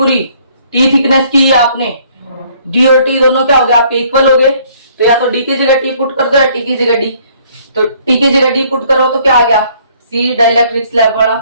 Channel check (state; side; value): inverted; both; correlation -0.62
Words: T थिकनेस की है आपने, D और T दोनों क्या हो गए आपके, इक्वल हो गए। तो या तो D की जगह T पुट कर दो या T की जगह D, तो T की जगह D पुट करो तो क्या आ गया, C डाइलेक्ट्रिक स्लैब वाला